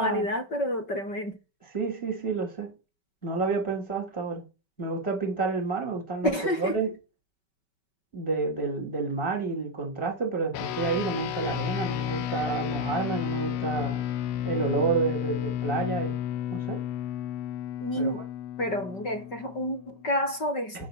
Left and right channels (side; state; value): right; late; 5.2 ms